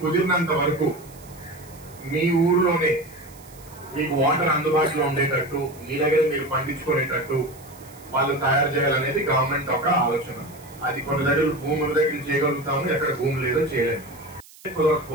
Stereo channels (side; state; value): right; noise; hiss, 23 dB below the sound